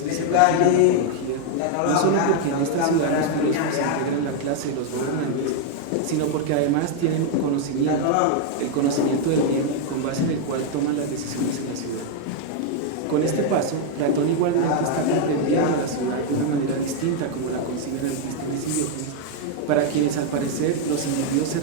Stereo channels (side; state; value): both; different; correlation 0.00